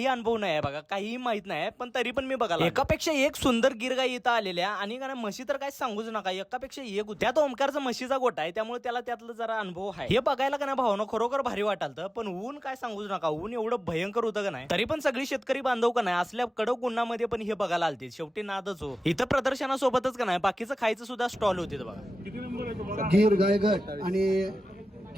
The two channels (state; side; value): normal; both; correlation 0.96